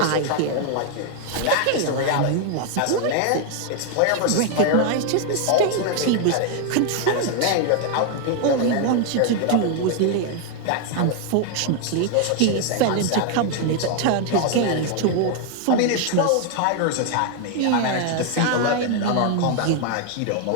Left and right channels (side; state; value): both; different; correlation 0.00